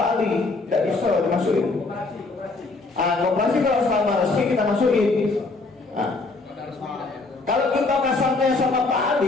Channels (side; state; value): right; quieter; 3.6 dB